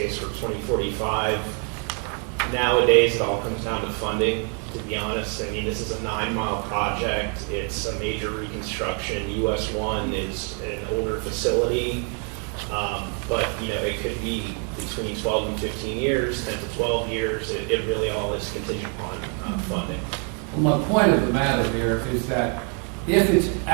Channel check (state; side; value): quieter; left; 39.4 dB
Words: for 2045. Nowadays, it all comes down to funding, to be honest. I mean, this is a 9-mile project. It's a major reconstruction. US 1 is an older facility. But, you know, it could be between 12 and 15 years, 10 to 12 years. It really all is contingent upon funding. Well, my point of the matter here is that if it's